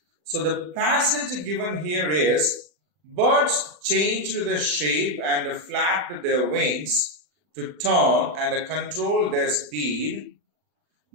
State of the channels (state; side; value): late; left; 40 ms